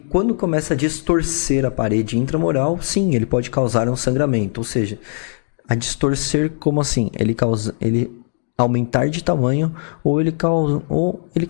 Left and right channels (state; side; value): silent; right; digital silence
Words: quando começa a distorcer a parede intramural, sim, ele pode causar um sangramento, ou seja, a distorcer como assim? Ele aumentar de tamanho ou ele